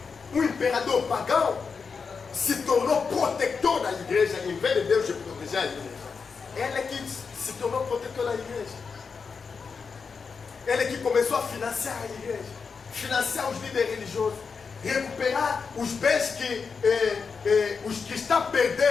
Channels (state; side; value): quieter; right; 5.4 dB